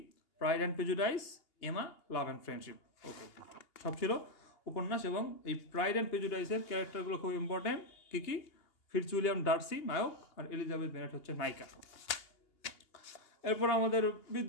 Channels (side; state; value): right; late; 2.8 ms